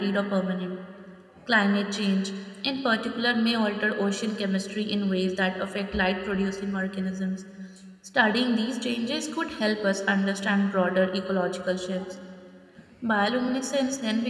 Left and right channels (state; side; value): identical; both; correlation 1.00